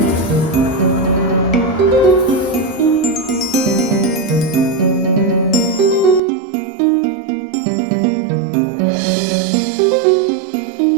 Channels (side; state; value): left; drops out; at 6.2 s